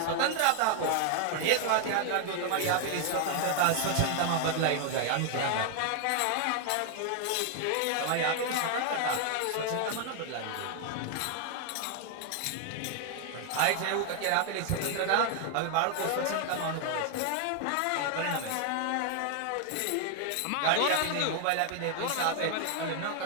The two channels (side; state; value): both; different; correlation 0.00